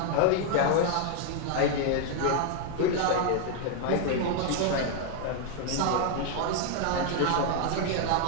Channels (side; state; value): both; different; correlation 0.00